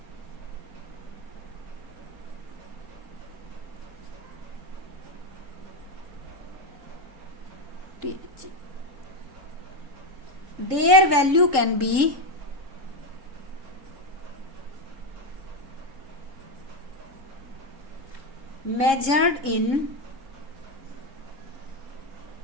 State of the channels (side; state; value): left; late; 3.7 ms